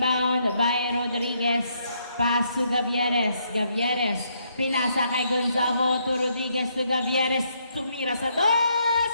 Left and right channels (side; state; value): both; inverted; correlation -0.74